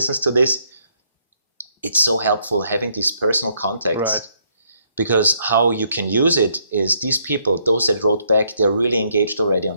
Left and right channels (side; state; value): both; inverted; correlation -0.72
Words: to this, it's so helpful having these personal contacts. Because how you can use it is these people, those that wrote back, they're really engaged already